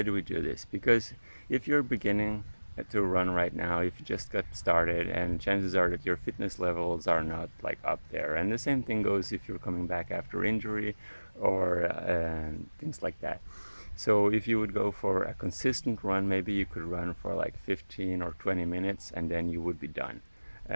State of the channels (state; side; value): inverted; both; correlation -1.00